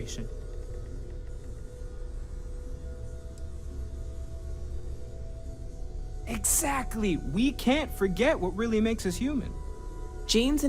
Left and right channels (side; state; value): both; identical; correlation 1.00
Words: Exactly. We can't forget what really makes us human. Genes